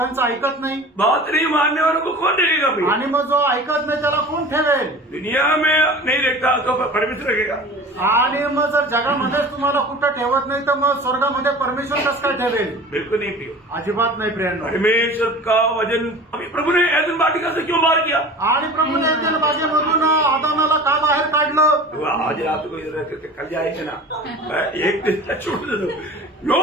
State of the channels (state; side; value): normal; both; correlation 0.39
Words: ऐकत नाही. बात नहीं मानने वालों को कौन देखेगा भाई? आणि मग जो ऐकत नाही त्याला कोण ठेवेल? दुनिया में नहीं देखता तो परमेश्वर रखेगा. आणि मग जर जगामध्येच तुम्हाला कुठं ठेवत नाही तर मग स्वर्गामध्ये परमेश्वर कसं काय ठेवेल? बिल्कुल नहीं प्रियो. अजिबात नाही प्रियांनो. परमेश्वर का वजन अभी प्रभु ने ऐदन वाटिका से क्यों बाहर किया? आणि प्रभूने एदेन बागेमधून आदामाला का बाहेर काढलं? तो आज रात को इधर रहते थे, कल जाएंगे ना. एक दिन छोड़ दो. नो,